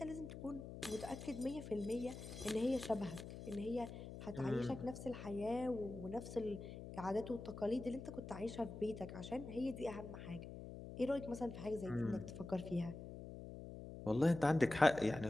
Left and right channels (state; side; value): noise; left; hum, 10 dB below the sound